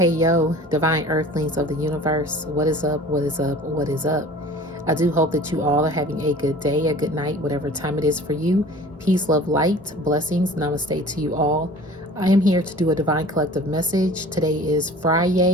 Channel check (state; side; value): normal; both; correlation 0.44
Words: divine earthlings of the universe. What is up? What is up? What is up? I do hope that you all are having a good day, a good night, whatever time it is for you. Peace, love, light, blessings, namaste to you all. I am here to do a divine collective message. Today is